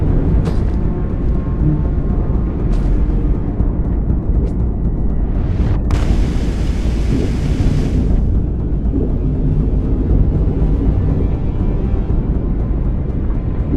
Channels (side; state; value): both; identical; correlation 1.00